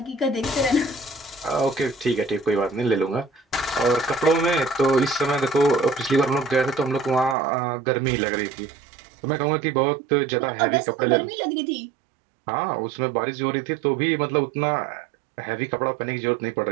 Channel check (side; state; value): left; drops out; at 7.4 s